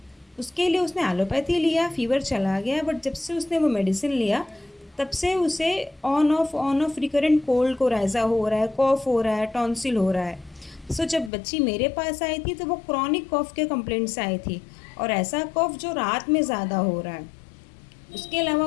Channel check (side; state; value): right; drops out; at 11.3 s